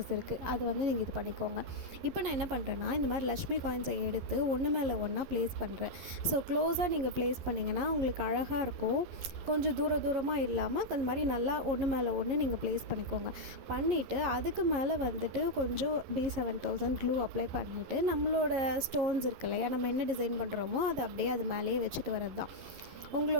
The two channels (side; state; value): left; late; 11 ms